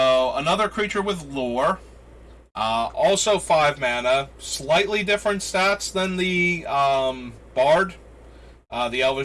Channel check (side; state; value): both; identical; correlation 1.00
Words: another creature with lore. Also 5 mana. Slightly different stats than the Bard. The